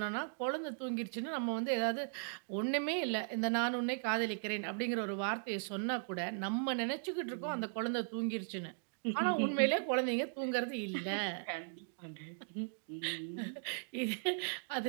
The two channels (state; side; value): silent; left; digital silence